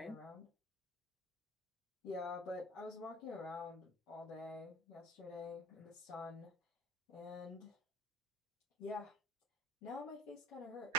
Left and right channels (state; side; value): normal; both; correlation 0.43